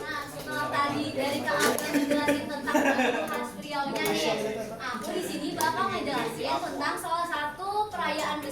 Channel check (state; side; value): noise; left; rumble, 23 dB below the sound